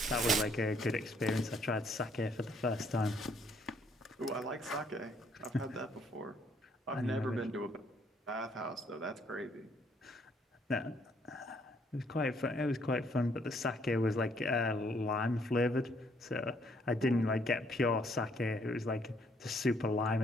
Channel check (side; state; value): both; normal; correlation 0.67